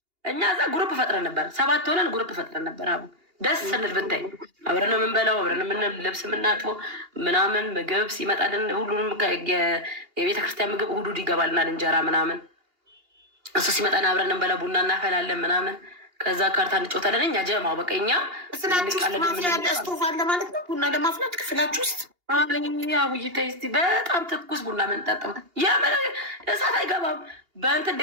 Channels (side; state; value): left; late; 2.8 ms